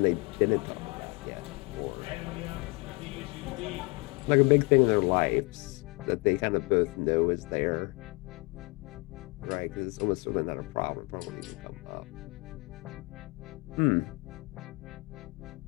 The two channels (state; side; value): quieter; right; 28.6 dB